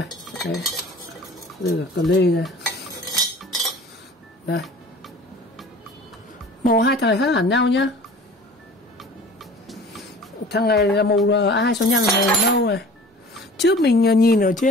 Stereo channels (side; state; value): both; normal; correlation 0.43